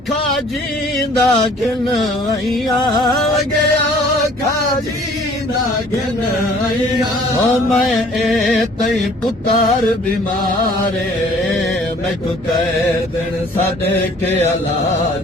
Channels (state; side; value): normal; both; correlation 0.54